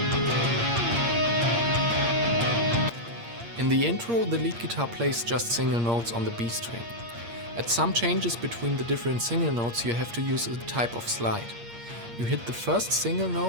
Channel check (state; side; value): late; left; 8.6 ms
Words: In the intro, the lead guitar plays just single notes on the B string. At some changes between the different single notes, you have to use a type of slide. You hit the first single